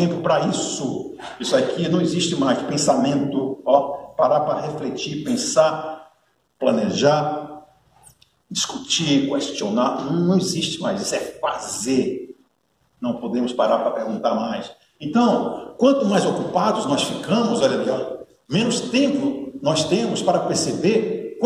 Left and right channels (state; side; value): identical; both; correlation 1.00